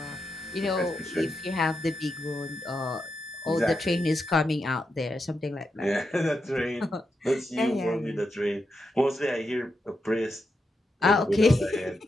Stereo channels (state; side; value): normal; both; correlation 0.86